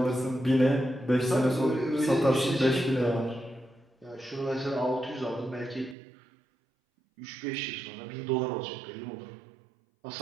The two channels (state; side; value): drops out; left; at 6.0 s